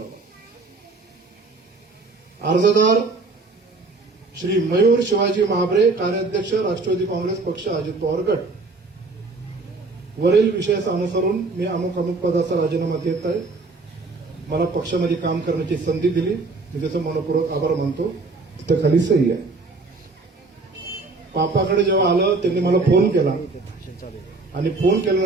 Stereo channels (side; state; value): left; quieter; 3.6 dB